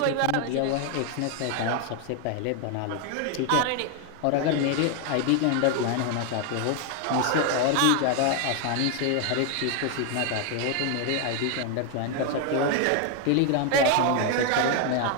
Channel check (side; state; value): both; different; correlation 0.01